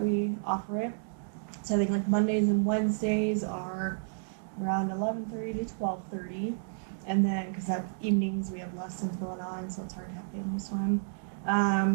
offer it. So I think like Mondays and Wednesdays are around 11:30 to 12:30. And then, because that's evenings, we have lessons going on, so it's hard to have family swim.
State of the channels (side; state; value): left; silent; digital silence